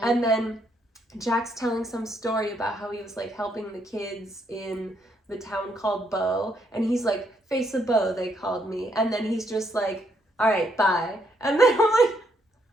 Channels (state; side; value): normal; both; correlation 0.73